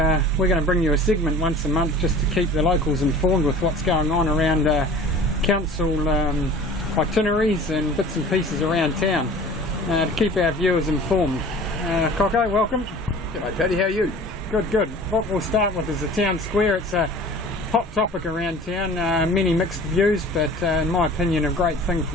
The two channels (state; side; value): normal; both; correlation 0.43